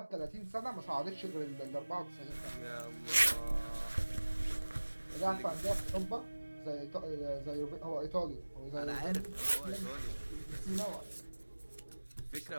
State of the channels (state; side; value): inverted; both; correlation -1.00